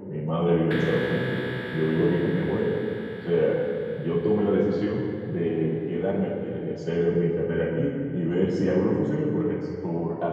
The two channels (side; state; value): both; identical; correlation 1.00